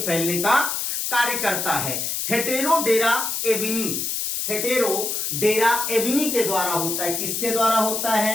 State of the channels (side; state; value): left; noise; hiss, 2 dB below the sound